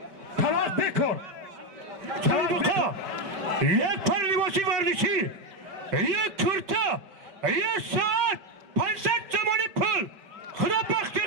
talak bekor çalbuka یک پرلیواسی ورزشی یک کرتا یک ساعت 500 زمانی پل خدا بخش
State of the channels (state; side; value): late; left; 5.1 ms